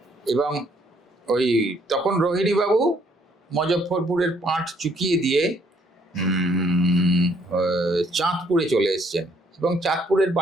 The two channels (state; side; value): normal; both; correlation 0.66